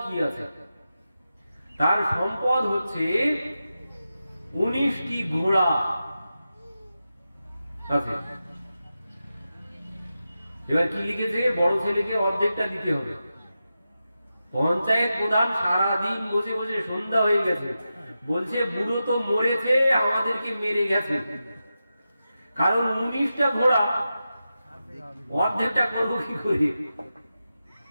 কি আছে। তার সম্পদ হচ্ছে 19টি ঘোড়া আছে। এবার কি লিখেছে, বড় ছেলেকে অর্ধেকটা দিতে হবে। পঞ্চায়েত প্রধান সারাদিন বসে বসে সন্ধ্যা হয়ে গেছে, বলছে বুড়ো তো মরেছে, আমাদেরকে মেরে গেছে, কারণ 19টা ঘোড়া অর্ধেকটা করবো কি করে।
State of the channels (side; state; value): both; inverted; correlation -0.91